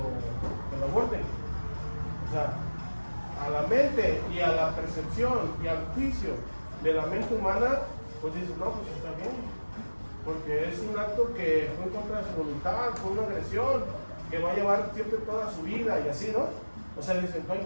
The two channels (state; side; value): inverted; both; correlation -1.00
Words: aborten? O sea, a la mente y a la percepción y al juicio de la mente humana, pues dices, no, pues está bien, porque es un acto que fue contra su voluntad, fue una agresión que va a llevar siempre toda su vida y así, ¿no? O sea, dicen, no